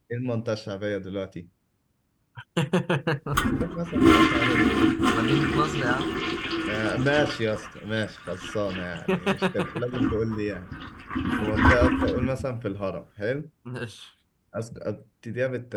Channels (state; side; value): identical; both; correlation 1.00